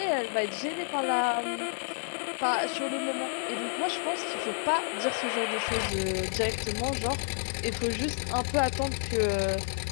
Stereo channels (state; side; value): silent; right; 58 dB below the other